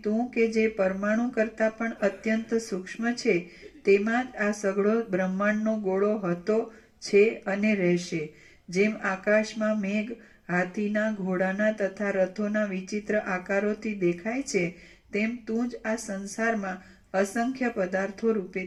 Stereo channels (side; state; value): both; identical; correlation 1.00